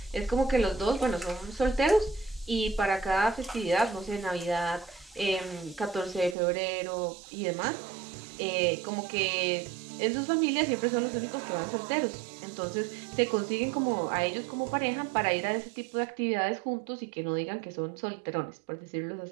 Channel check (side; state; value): left; drops out; at 6.4 s